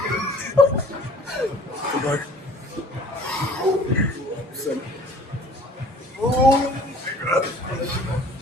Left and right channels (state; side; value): normal; both; correlation 0.49